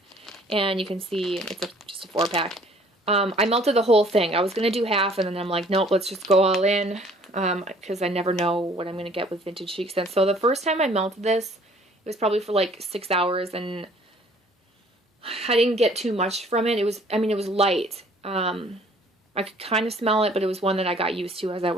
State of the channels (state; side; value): normal; both; correlation 0.56